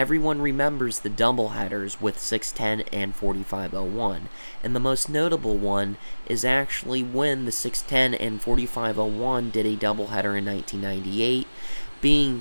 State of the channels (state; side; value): inverted; both; correlation -1.00